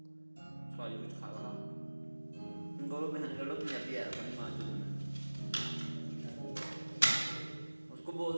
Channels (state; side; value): inverted; both; correlation -1.00